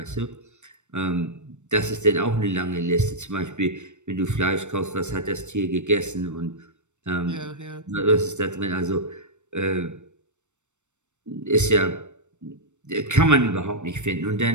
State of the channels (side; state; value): left; late; 0.84 ms